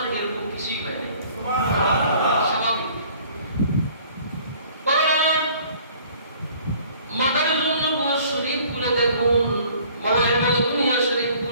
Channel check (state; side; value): inverted; both; correlation -0.54